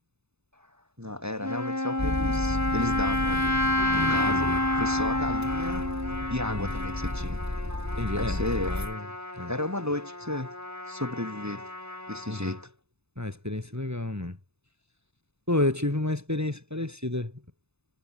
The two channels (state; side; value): late; left; 0.80 ms